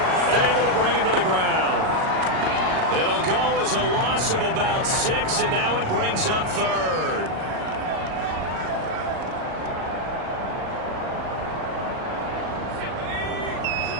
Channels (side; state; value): left; late; 38 ms